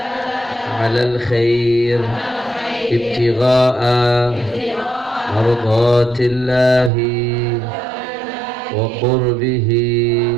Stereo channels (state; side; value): drops out; left; at 6.9 s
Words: على الخير ابتغاء مرضات الله وقربه